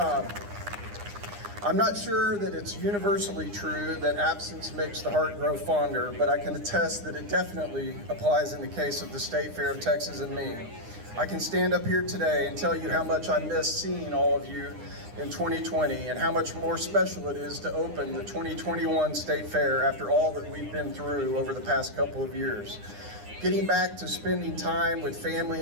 I'm not sure that it's universally true that absence makes the heart grow fonder, but I can attest that it definitely applies in the case of the State Fair of Texas and me. I can stand up here today and tell you how much I miss seeing all of you in 2020 and how much more special it is to open the 2021 State Fair after all that we've been through over the past couple of years. Getting back to spending time with family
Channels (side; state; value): left; late; 9.8 ms